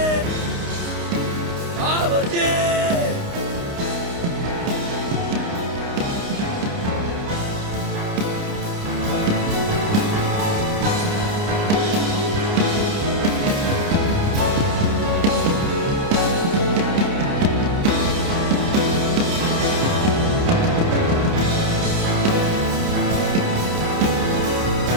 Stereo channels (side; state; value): left; late; 29 ms